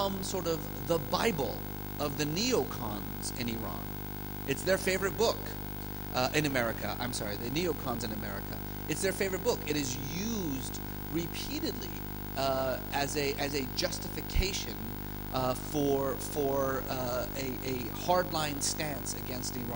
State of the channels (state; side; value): normal; both; correlation 0.92